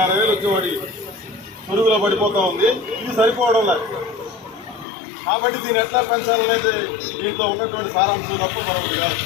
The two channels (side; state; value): right; drops out; at 4.9 s